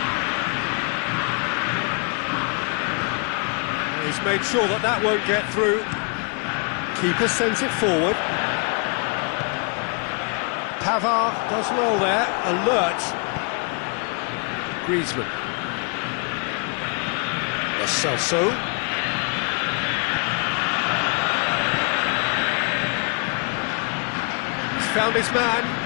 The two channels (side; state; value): right; quieter; 37.2 dB